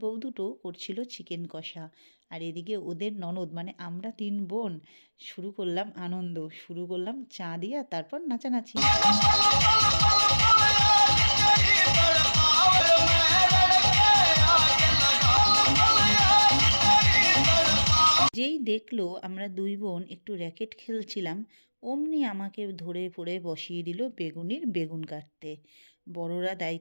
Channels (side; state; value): both; inverted; correlation -1.00